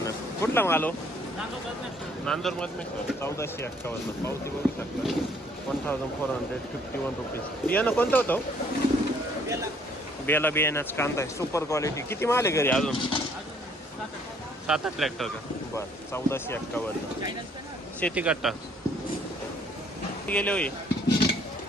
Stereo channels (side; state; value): both; normal; correlation 0.62